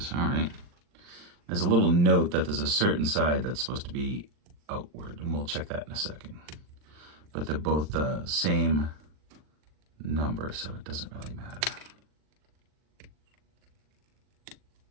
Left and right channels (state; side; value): late; left; 40 ms